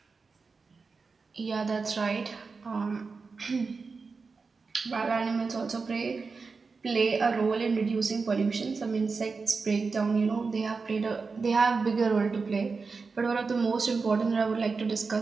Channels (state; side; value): quieter; left; 4.6 dB